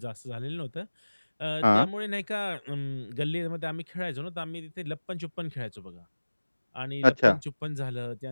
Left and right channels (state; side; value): inverted; both; correlation -1.00